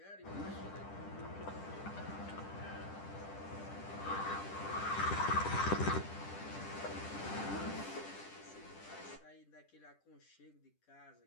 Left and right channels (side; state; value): right; late; 10 ms